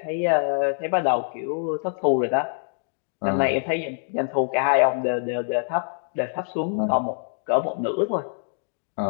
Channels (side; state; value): right; silent; digital silence